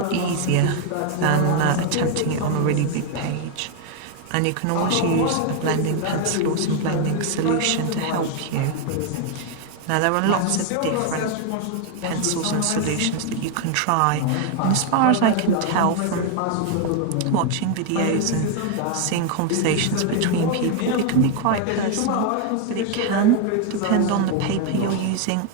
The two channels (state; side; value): different; both; correlation 0.01